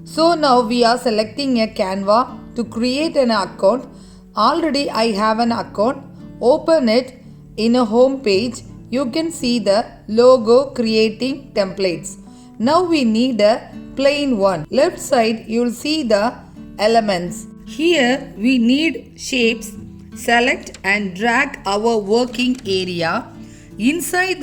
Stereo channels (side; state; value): both; identical; correlation 1.00